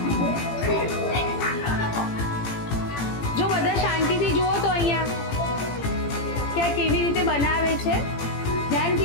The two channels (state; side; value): late; right; 18 ms